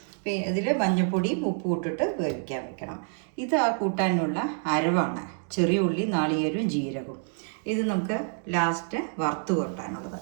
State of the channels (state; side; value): silent; left; 57 dB below the other